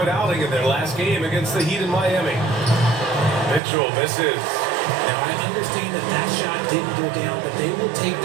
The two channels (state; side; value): drops out; left; at 3.6 s